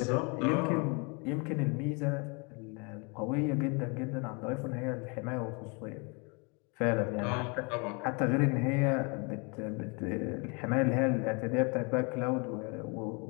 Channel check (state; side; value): quieter; right; 32.3 dB